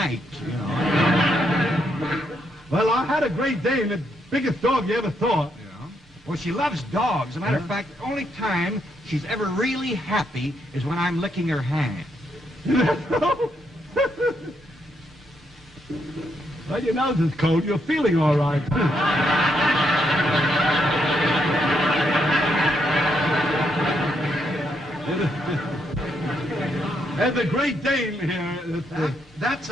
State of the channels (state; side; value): normal; both; correlation 0.77